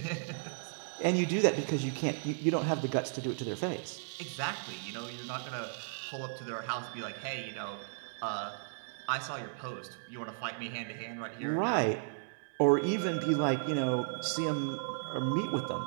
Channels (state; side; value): silent; left; digital silence